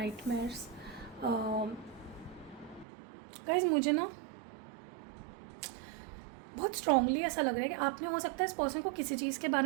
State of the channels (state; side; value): drops out; left; at 2.9 s